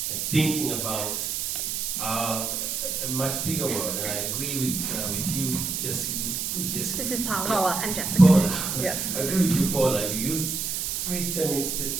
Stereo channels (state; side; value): noise; right; hiss, 2 dB below the sound